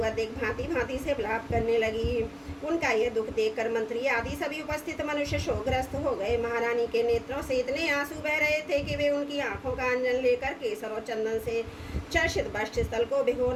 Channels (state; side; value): identical; both; correlation 1.00